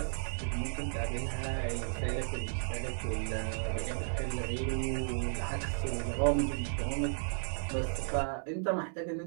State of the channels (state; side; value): silent; left; 55 dB below the other